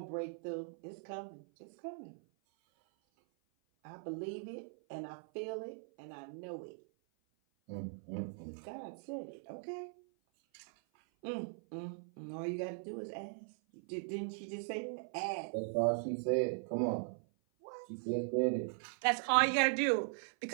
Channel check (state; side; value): silent; left; 51 dB below the other